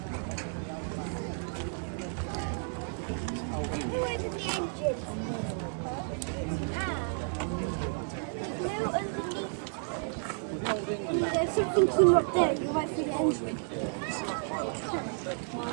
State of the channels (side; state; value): left; silent; 56 dB below the other